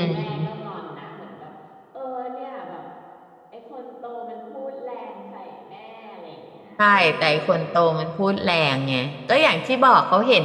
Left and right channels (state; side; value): identical; both; correlation 1.00